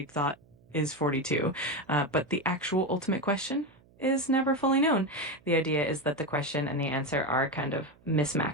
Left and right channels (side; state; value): right; noise; hum, 29 dB below the sound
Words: Thought is 42, but the actual ultimate question is never fully known. The idea is that the question and the answer are kind of